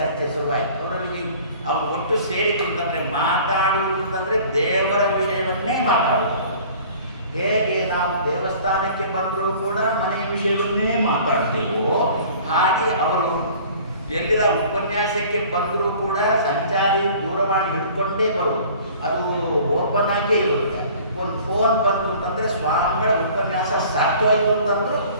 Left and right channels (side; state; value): both; inverted; correlation -0.48